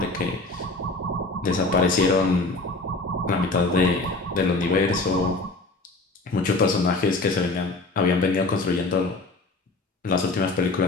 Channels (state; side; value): quieter; right; 3.2 dB